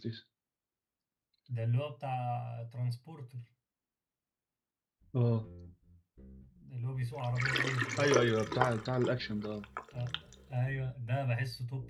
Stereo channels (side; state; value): both; identical; correlation 1.00